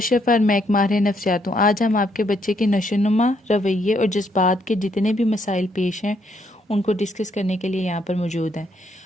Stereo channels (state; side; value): normal; both; correlation 0.73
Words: और मैं एक माहिर नफ्सियात हूँ। आज हम आपके बच्चे के नशोनुमा, रवैये और जज्बात के जितने भी मसाइल पेश हैं उनको डिस्कस करने के लिए यहाँ पर मौजूद हैं।